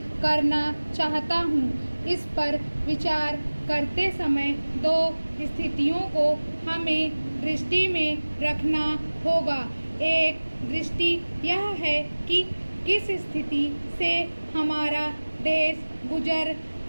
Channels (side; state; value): both; inverted; correlation -1.00